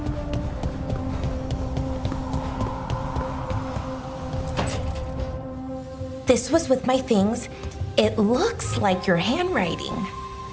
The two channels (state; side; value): identical; both; correlation 1.00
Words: This was with my things. It looks like your handwriting.